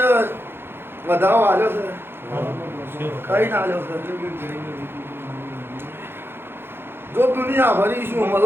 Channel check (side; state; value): left; late; 0.11 ms